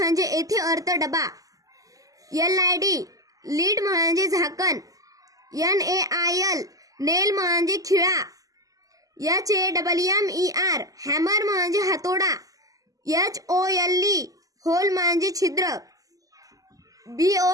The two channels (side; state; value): left; late; 0.17 ms